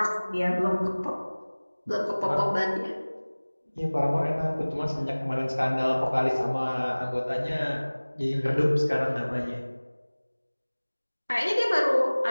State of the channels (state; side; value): inverted; both; correlation -1.00